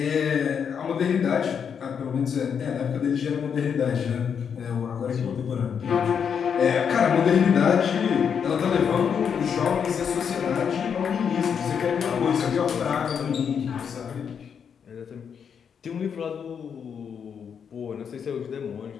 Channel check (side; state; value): right; quieter; 7.2 dB